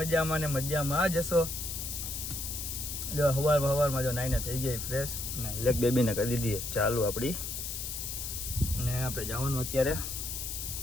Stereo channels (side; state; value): left; noise; hiss, 5 dB below the sound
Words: મજામાં ને મજામાં જ હશો. જો હવારમાં જો નાઈને થઈ ગઈ ફ્રેશ ને બ્લેક બેબીને કરી દીધી ચાલુ આપણી. ને આપણે જવાનું અત્યારે